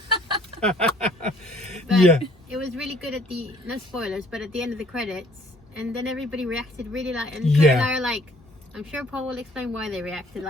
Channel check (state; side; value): normal; both; correlation 0.60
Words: But Yeah. it was really good at the, no spoilers, but at the end of the credits, and then everybody reacted really like, and Yeah. Claire and I are like, I'm sure Paul will explain why they reacted